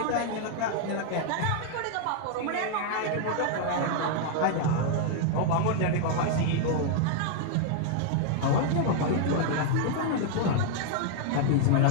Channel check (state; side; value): different; both; correlation 0.00